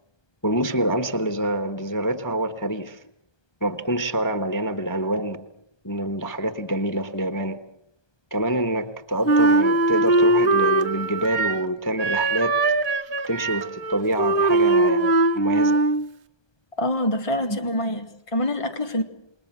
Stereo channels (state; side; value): late; right; 1.2 ms